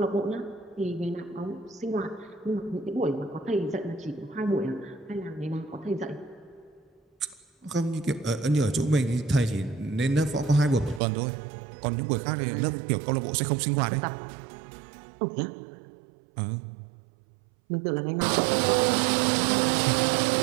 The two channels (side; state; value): left; drops out; at 11.0 s